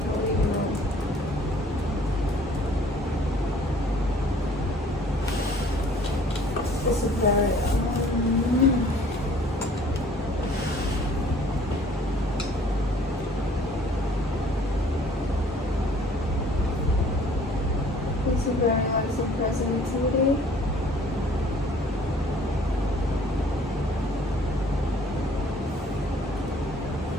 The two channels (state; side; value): normal; both; correlation 0.55